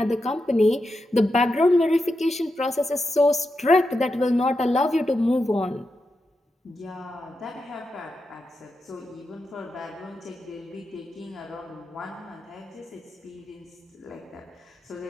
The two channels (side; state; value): both; normal; correlation 0.87